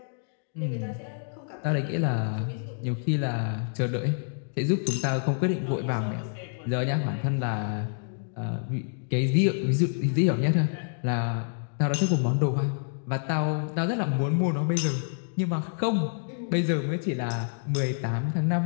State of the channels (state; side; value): silent; right; digital silence